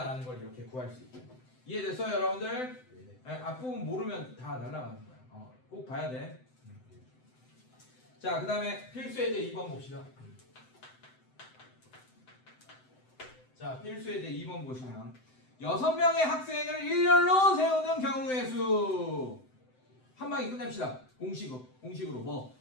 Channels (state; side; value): late; right; 7.8 ms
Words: 걸 이렇게 구할 수 있게. 이해됐어요, 여러분들? 네, 앞부분 모르면 다 날아가는 거야. 꼭 봐야 돼. 자, 그 다음에 필수 예제 2번 봅시다. 자, 필수 예제 2번 보시면 6명의 학생을 일렬로 세우는 경우의 수. 한 방에 끝냅시다. 공식으로 뭐?